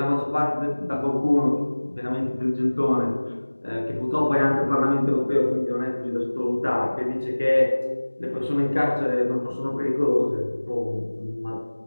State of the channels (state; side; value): inverted; both; correlation -1.00